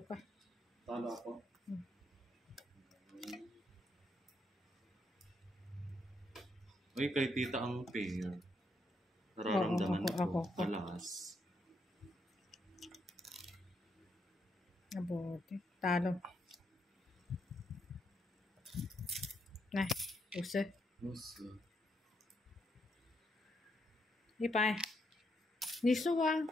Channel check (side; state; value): both; normal; correlation 0.78